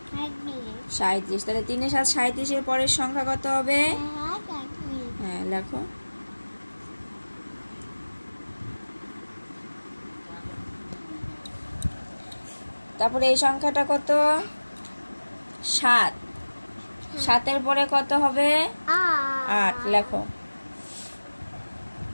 37, তাহলে 3 এ 7 37 এর পরের সংখ্যা কত হবে? হ্যাঁ, লেখো। তারপরে এই সংখ্যাটা কত? 7, 7 এর পরে কত হবে? 8, লেখো।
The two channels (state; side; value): inverted; both; correlation -1.00